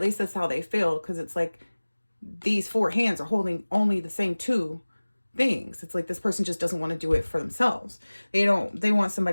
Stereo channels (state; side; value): inverted; both; correlation -1.00